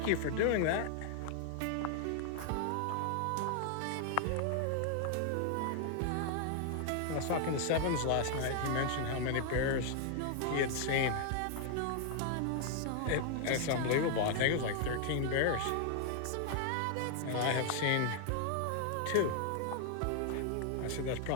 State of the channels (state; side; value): different; both; correlation 0.00